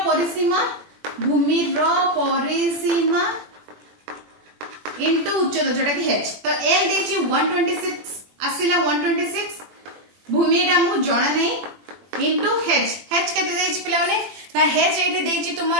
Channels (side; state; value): left; late; 21 ms